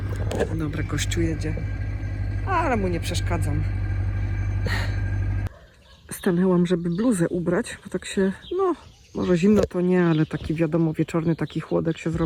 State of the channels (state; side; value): identical; both; correlation 1.00